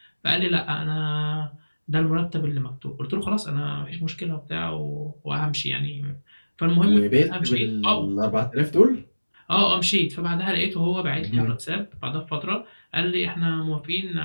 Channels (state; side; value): inverted; both; correlation -1.00